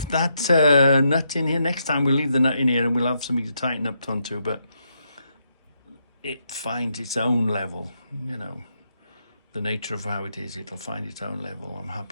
that nut in here. Next time we'll leave the nut in here and we'll have something to tighten up onto, but it finds its own level, you know. The nature of how it is, it'll find its own level. I'm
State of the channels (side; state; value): both; inverted; correlation -0.80